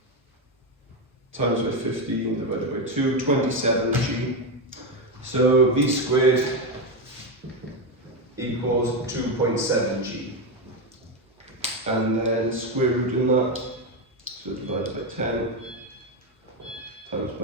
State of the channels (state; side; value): normal; both; correlation 0.10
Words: times by 15 divided by 2, 27g. So v squared equals 2.7g. And then square root in that, so divided by 10 times